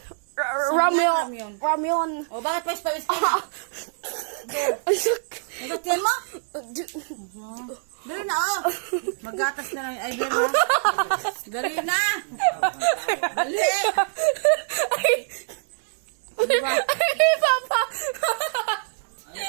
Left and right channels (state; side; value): silent; left; digital silence